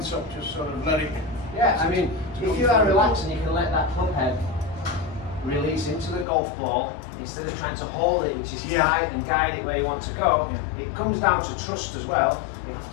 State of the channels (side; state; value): right; drops out; at 6.2 s